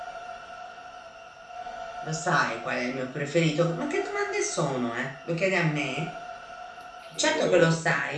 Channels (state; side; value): identical; both; correlation 1.00